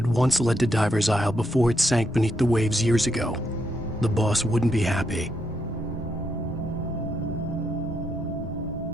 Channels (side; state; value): both; normal; correlation 0.79